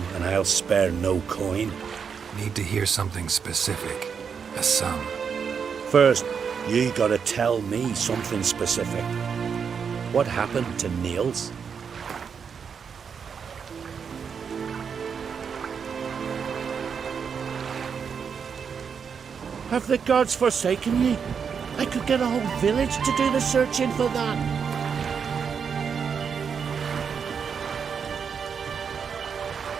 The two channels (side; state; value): left; quieter; 6.6 dB